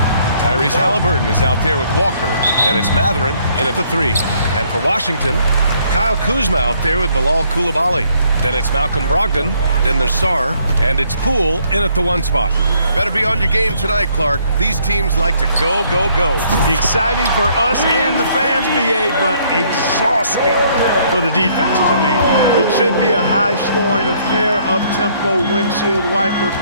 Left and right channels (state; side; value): inverted; both; correlation -0.66